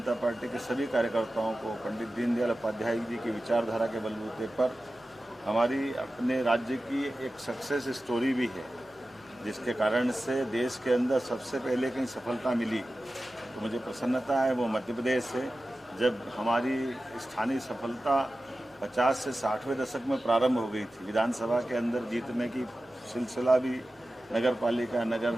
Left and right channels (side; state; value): both; normal; correlation 0.94